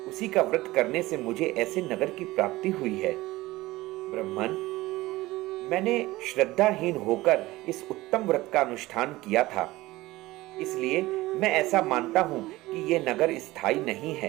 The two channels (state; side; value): quieter; left; 18.7 dB